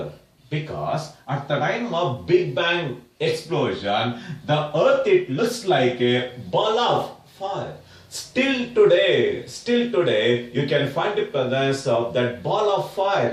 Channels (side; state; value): both; identical; correlation 1.00